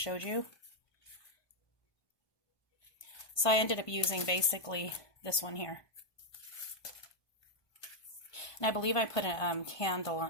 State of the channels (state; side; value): late; right; 1.2 ms